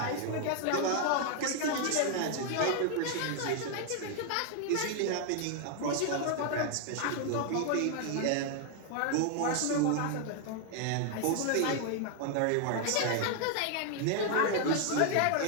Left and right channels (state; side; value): different; both; correlation 0.00